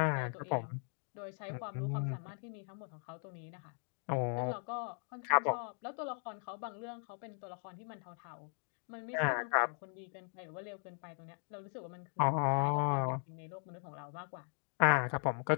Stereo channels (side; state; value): right; silent; 52 dB below the other